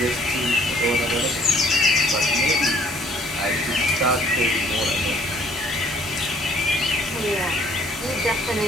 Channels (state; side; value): normal; both; correlation 0.60